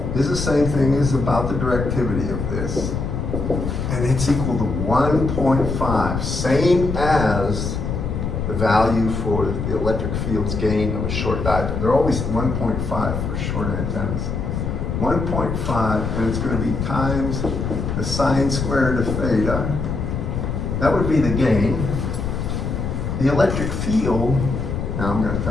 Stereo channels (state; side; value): noise; left; rumble, 3 dB below the sound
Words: is the same thing as about the directivity of this. And it's equal to 1.5, same as the value for the electric field's gain of a short dipole. They're always 1.5 for short antennas. 1.5, and it's going to be times the sine squared of theta That would be the gain. The electric field, now I'm gonna